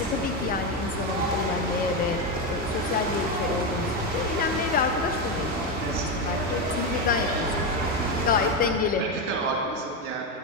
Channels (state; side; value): normal; both; correlation 0.11